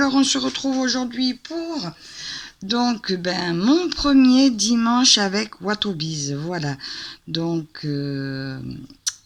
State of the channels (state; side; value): identical; both; correlation 1.00